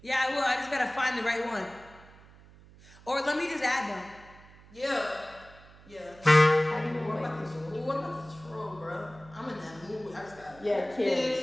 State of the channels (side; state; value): right; noise; hum, 23 dB below the sound